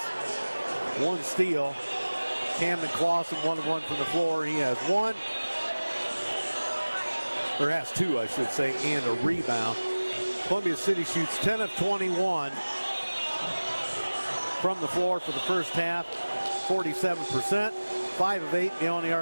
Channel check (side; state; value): both; inverted; correlation -1.00